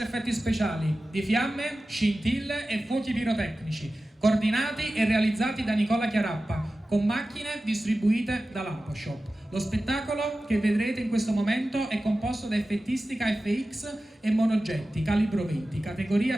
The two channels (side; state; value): both; normal; correlation 0.95